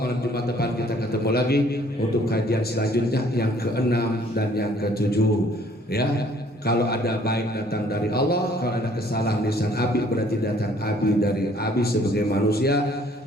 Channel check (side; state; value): both; normal; correlation 0.60